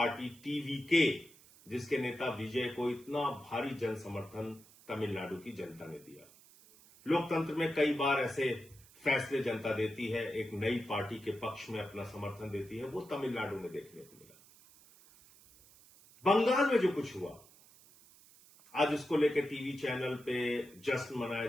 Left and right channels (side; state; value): right; noise; hiss, 24 dB below the sound